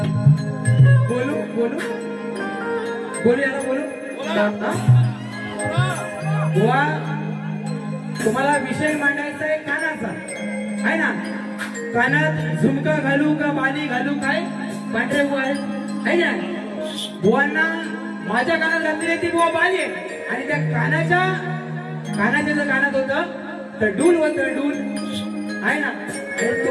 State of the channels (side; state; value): both; identical; correlation 1.00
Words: बोलू याला बोलू. बुवा तुम्हाला विषय मांडायचा आहे कानाचा आहे ना. कानात झुमका घालू का बाली घालू? काय पांढरे बुवा आहे ना. बुवांना माझ्या कानात घातलेली ती बुवा बाली आहे आणि त्या कानाच्या जर कानात होतं तर डूल होतं डूल आहे ना.